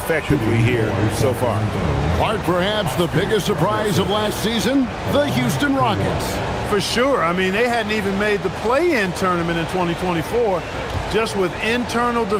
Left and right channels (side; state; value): both; identical; correlation 1.00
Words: here so far. Part perhaps the biggest surprise of last season, the Houston Rockets. For sure. I mean, they hadn't even made the play-in tournament in 2024. Just with internal